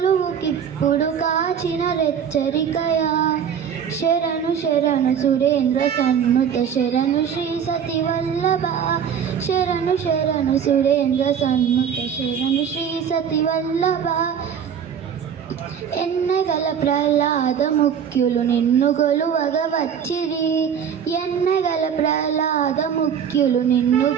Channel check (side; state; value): left; quieter; 7.9 dB